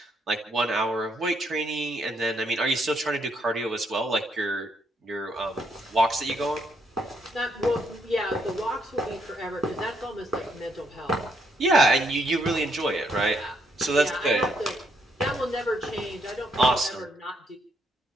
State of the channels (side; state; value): both; normal; correlation 0.74